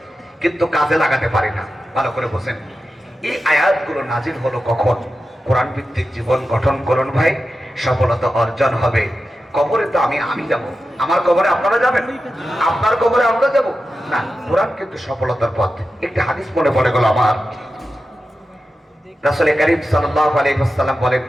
কিন্তু কাজে লাগাতে পারি না। ভালো করে বোঝেন। এই আয়াতগুলো নাজিল হলো কখন? কোরআন ভিত্তিক জীবন গঠন করুন ভাই, সফলতা অর্জন হবে। কবরে তো আমি যাব, আমার কবরে আপনারা যাবেন, আপনার কবরে আমরা যাব না। কোরআন কিন্তু সফলতার পথ। একটি হাদিস মনে পড়ে গেল আমার। রাসূল কারীম সাল্লাল্লাহু আলাইহি ওয়াসাল্লাম বলেন,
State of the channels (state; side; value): normal; both; correlation 0.91